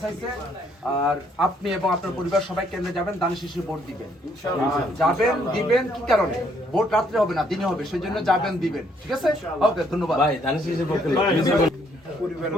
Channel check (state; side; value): normal; both; correlation 0.68